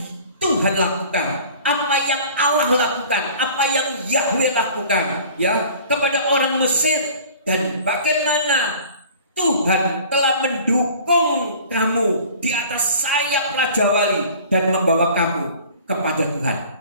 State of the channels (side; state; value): both; inverted; correlation -0.46